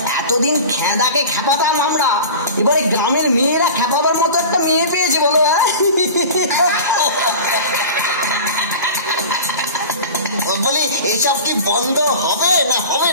এতদিন খেদাকে খেপাতাম আমরা, এবারে গ্রামের মেয়েরা খেপাবার মতো একটা মেয়ে পেয়েছে বলো। বলি এসব কি বন্ধ হবে না হবে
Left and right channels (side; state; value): both; inverted; correlation -0.35